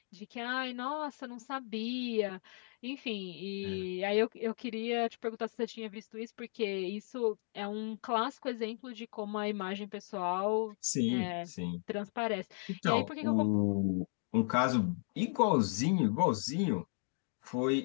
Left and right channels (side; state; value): right; silent; 54 dB below the other